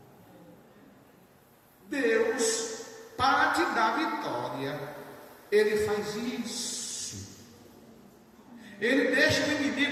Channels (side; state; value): both; identical; correlation 1.00